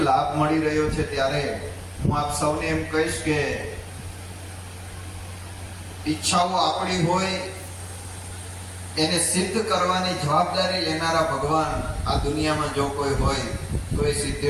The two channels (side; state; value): both; identical; correlation 1.00